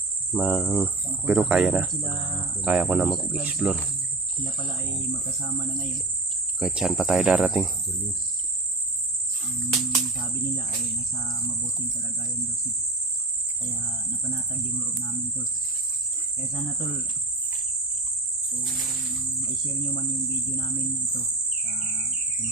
Pero kaya na. Kaya ko na mag-explore. Sila pala ay magkasama na ngayon. Kahit saan pa tayo darating. Sabi nila ay nasa mabuting kalagayan daw sila. Kaya napanatag yung loob namin tol. Kaya sana tol, kung i-share nyo man yung video namin ito sa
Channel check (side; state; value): left; quieter; 3.2 dB